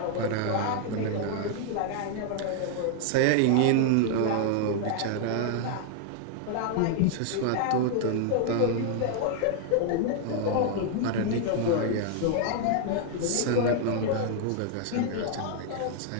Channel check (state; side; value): different; both; correlation 0.00